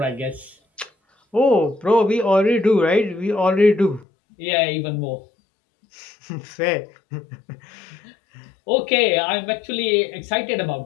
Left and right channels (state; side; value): drops out; right; at 4.0 s